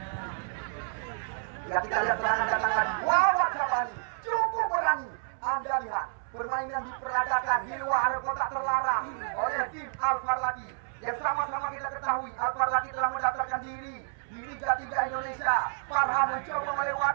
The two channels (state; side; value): silent; left; 58 dB below the other